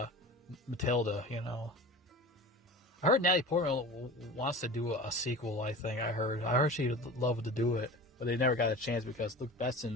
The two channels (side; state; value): both; normal; correlation 0.35